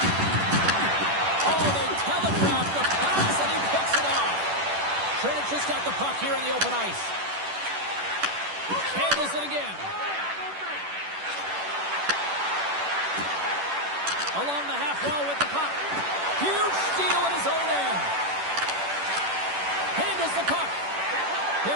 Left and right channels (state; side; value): late; left; 10 ms